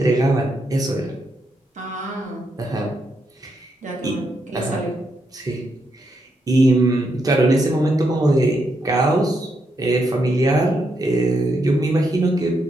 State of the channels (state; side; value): normal; both; correlation 0.80